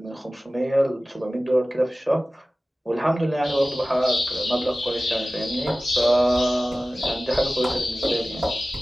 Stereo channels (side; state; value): both; normal; correlation 0.96